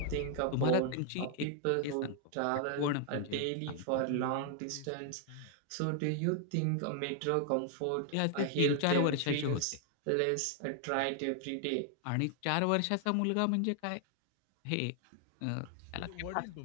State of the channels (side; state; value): both; different; correlation 0.00